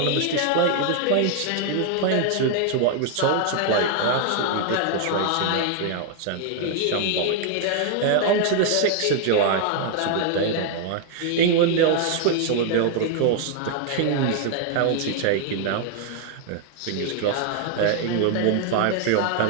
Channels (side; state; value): both; different; correlation 0.00